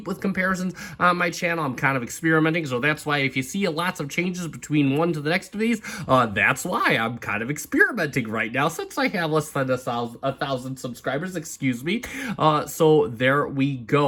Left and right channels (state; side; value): identical; both; correlation 1.00